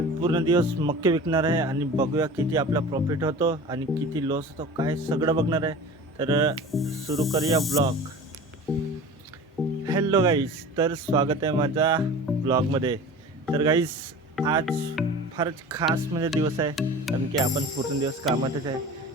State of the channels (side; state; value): both; normal; correlation 0.38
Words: पूर्ण दिवस मक्के विकणार आहे आणि बघूया किती आपला प्रॉफिट होतो आणि किती लॉस होतो, काय सगळं बघणार आहे. तर सुरू करूया ब्लॉग. हॅलो गाईस, तर स्वागत आहे माझ्या ब्लॉगमध्ये. तर गाईस, आज फारच खास म्हणजे दिवस आहे, कारण की आपण पूर्ण दिवस कामातच आहे.